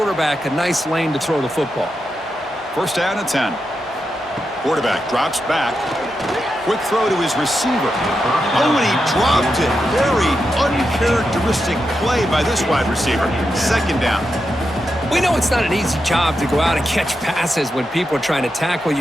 a nice lane to throw the football. 1st down and 10. Quarterback drops back. Quick throw to his receiver. Oh, and he dropped it. Very uncharacteristic play by this wide receiver. 2nd down. We know it's not an easy job to go out and catch passes when people are trying to tackle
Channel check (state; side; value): normal; both; correlation 0.87